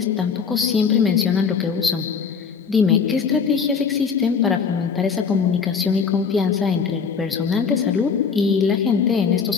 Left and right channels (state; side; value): quieter; right; 6.0 dB